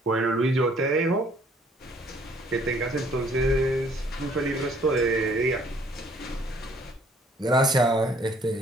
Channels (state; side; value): normal; both; correlation 0.61